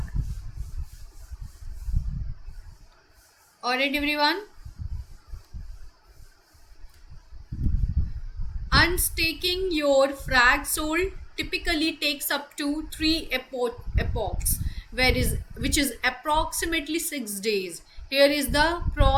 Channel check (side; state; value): both; identical; correlation 1.00